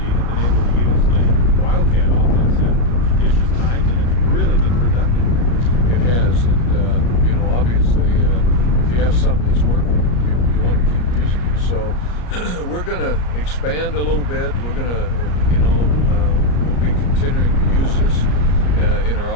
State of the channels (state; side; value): late; right; 34 ms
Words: been able to use the Wildcat offense at judicious times, and it's really been productive. It has, and you know, obviously, if you have something that's working, you want to keep using it. So we're going to expand a little bit. We're going to, we'll be continuing to use this in